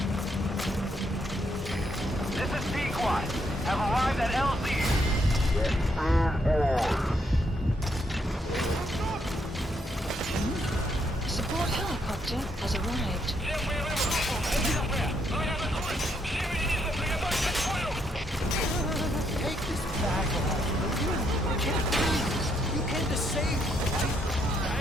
This is B-Quad. Have arrived at LZ. Support helicopter has arrived. Take this bag off, will you? I can't breathe. You came to save me, right?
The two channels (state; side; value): normal; both; correlation 0.75